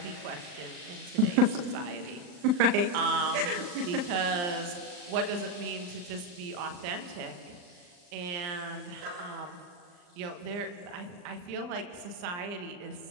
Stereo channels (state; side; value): late; left; 39 ms